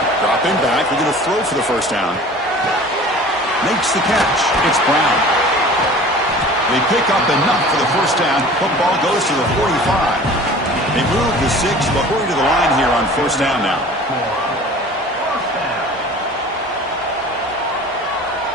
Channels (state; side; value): normal; both; correlation 0.43